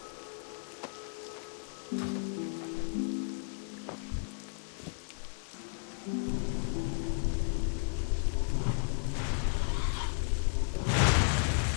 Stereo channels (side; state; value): right; silent; 55 dB below the other